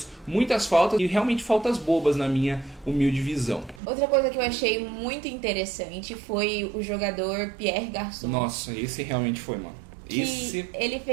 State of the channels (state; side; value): drops out; left; at 3.8 s